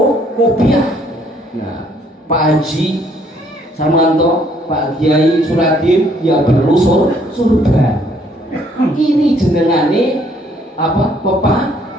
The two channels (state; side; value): normal; both; correlation 0.65